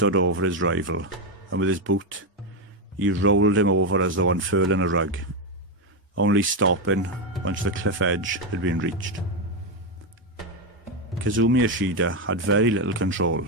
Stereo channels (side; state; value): both; normal; correlation 0.07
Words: over his rival, and with his boot, he rolled him over as though unfurling a rug, only stopping once the cliff edge had been reached. Kazumi Ishida had very little control